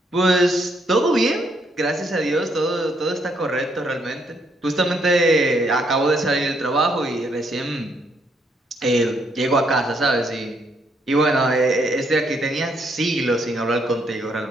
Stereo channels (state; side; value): normal; both; correlation 0.72